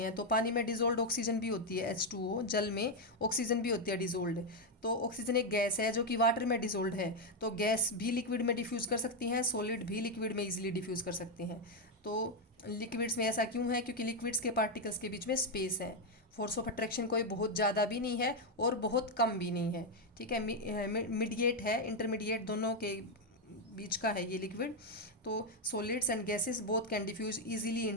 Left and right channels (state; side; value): normal; both; correlation 0.04